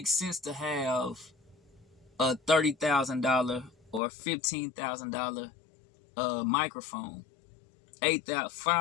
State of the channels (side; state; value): right; drops out; at 4.0 s